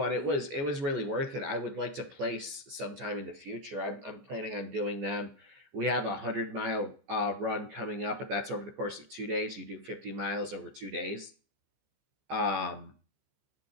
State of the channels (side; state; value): left; late; 15 ms